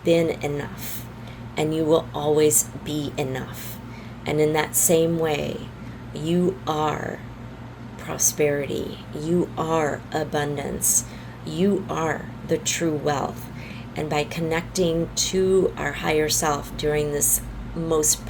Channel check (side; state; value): both; identical; correlation 1.00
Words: been enough, and you will always be enough. And in that same way, you are prosperity, you are abundance, you are the true wealth. And by connecting to our higher self during this most